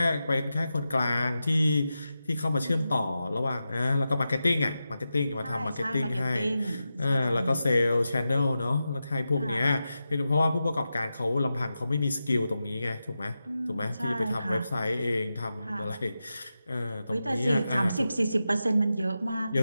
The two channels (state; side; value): inverted; both; correlation -0.91